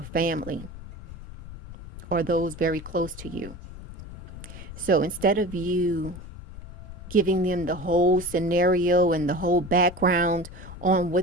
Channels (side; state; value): left; noise; rumble, 13 dB below the sound